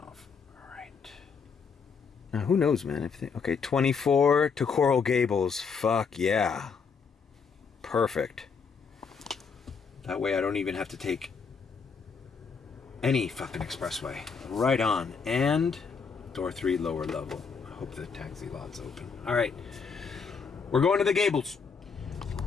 off. All right. Now, who knows, man? Okay, 24 to Coral Gables. Fuck yeah. Perfect. That way I don't even have to take any fucking expressway. Right on. And door 3, lower level. I hope the taxi lot's open. All right. We're going to the Gables.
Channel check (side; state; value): right; quieter; 5.6 dB